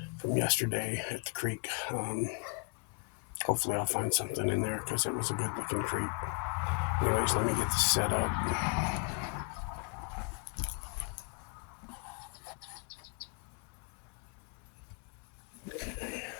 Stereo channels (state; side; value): quieter; right; 35.3 dB